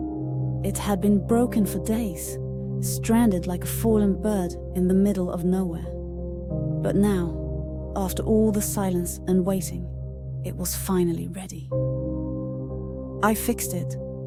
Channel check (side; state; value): both; identical; correlation 1.00